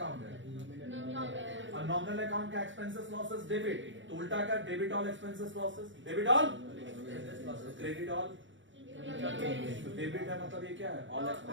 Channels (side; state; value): left; late; 0.55 ms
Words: है? और नॉमिनल अकाउंट का एक्सपेंसेस लॉसेस डेबिट, तो उल्टा का debit all expenses losses, debit all credit all, debit है मतलब ये क्या है ऑल